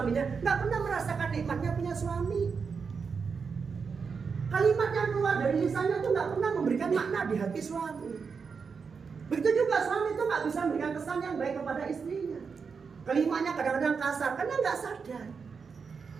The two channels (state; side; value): quieter; left; 5.6 dB